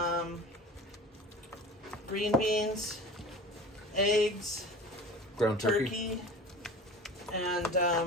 green beans, eggs, Ground turkey. and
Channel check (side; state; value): both; normal; correlation 0.37